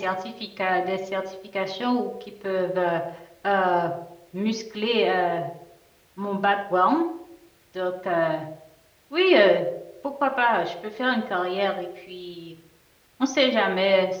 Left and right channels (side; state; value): both; identical; correlation 1.00